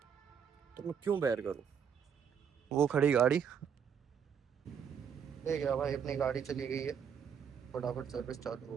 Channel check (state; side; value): quieter; left; 7.5 dB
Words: तो मैं क्यों बेयर करूँ। वो खड़ी गाड़ी ले गया भाई, अपनी गाड़ी चली गई है, फटाफट सर्विस चालू